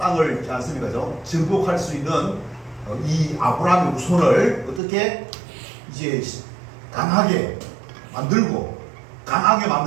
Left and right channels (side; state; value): left; drops out; at 4.8 s